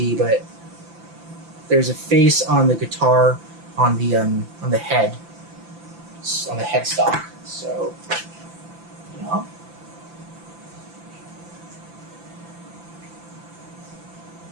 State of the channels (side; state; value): left; late; 5.9 ms